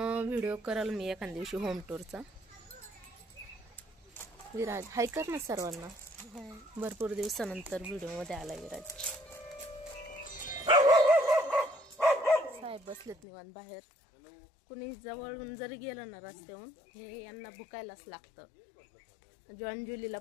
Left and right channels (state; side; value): drops out; right; at 13.2 s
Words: व्हिडिओ कराल मी एखाद्या दिवशी होम टूरचा. विराज हाय कर ना सर्वांना. भरपूर दिवसानंतर व्हिडिओ मध्ये आलाय विराज. साहेब बसलेत निवांत बाहेर. कुणी जवळून जरी गेलं ना रस्त्याहून, हे यांना भुकायलाच लागतं. जॉन जुलीला